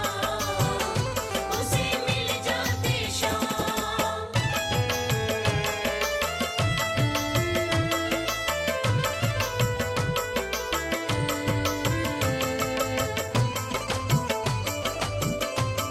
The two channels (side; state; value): both; identical; correlation 1.00